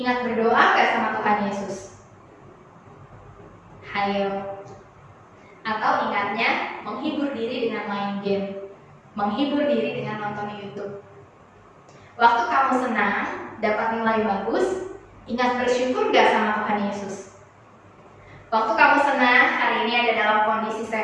berdoa nggak sama Tuhan Yesus? Hayo. Atau ingatnya menghibur diri dengan main game, menghibur diri dengan nonton YouTube. Waktu kamu senang, dapat nilai bagus, ingat bersyukur gak sama Tuhan Yesus? Waktu kamu senang, hari ini ada dalam kondisi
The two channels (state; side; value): identical; both; correlation 1.00